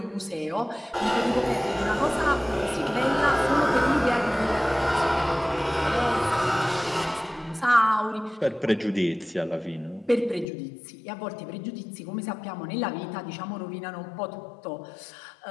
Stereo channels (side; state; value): right; drops out; at 10.5 s